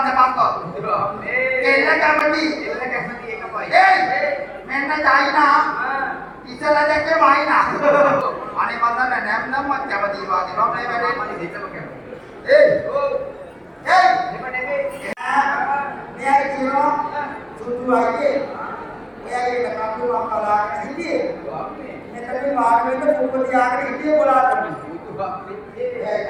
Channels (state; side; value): identical; both; correlation 1.00